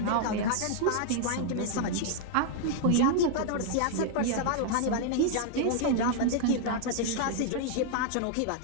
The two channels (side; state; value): both; different; correlation 0.00